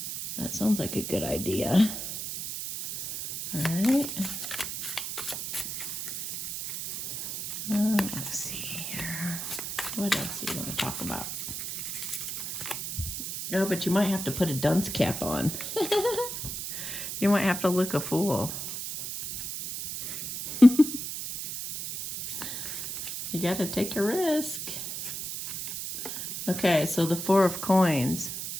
That sounds like a good idea. All right. Let's see here. What else do you want to talk about? Oh, but you might have to put a dunce cap on. You might have to look a fool. You got to take a risk. Okay, so the Four of Coins.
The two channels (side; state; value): right; noise; hiss, 5 dB below the sound